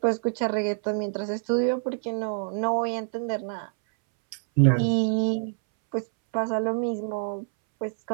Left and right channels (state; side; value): silent; left; 61 dB below the other